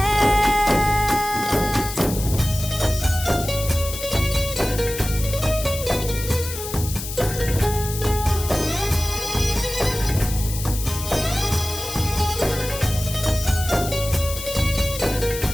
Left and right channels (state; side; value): noise; left; hiss, 8 dB below the sound